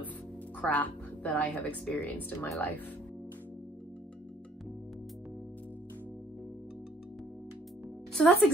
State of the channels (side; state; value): both; normal; correlation 0.61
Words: crap that I have experienced in my life. So that's